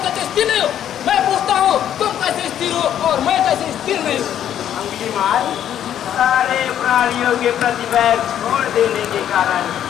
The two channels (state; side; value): quieter; right; 10.4 dB